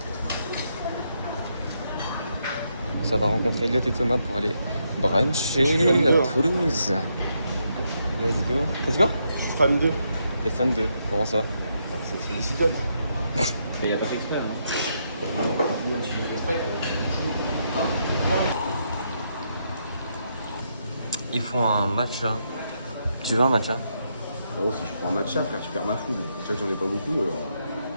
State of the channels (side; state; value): both; inverted; correlation -0.79